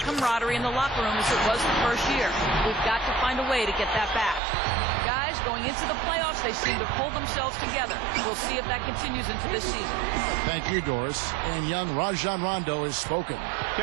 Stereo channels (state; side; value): drops out; left; at 4.4 s